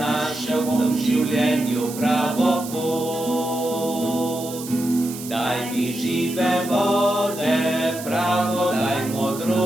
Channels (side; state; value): right; noise; hiss, 12 dB below the sound